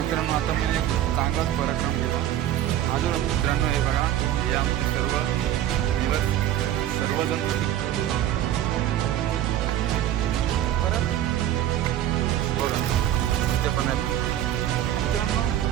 आता मी एक चांगलाच पराक्रम केला अजून मित्रांनो. हे बघा या सर्वजण परत बघा ते पण आहे मित्रांनो.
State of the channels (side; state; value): left; quieter; 12.1 dB